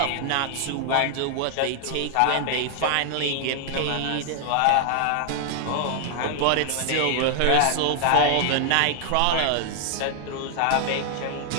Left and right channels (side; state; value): both; different; correlation 0.00